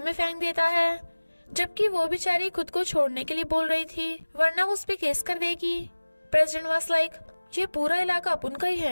में फेंक देता है, जबकि वो बेचारी खुद को छोड़ने के लिए बोल रही थी, वरना वो उस पे केस कर देगी। प्रेसिडेंट वाज लाइक, ये पूरा इलाका अपन का ही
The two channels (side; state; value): both; inverted; correlation -1.00